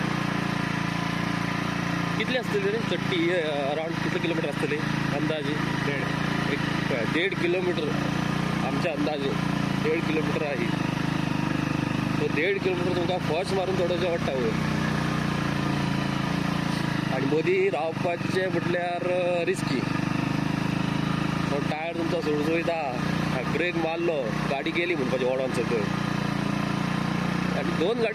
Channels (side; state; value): both; identical; correlation 1.00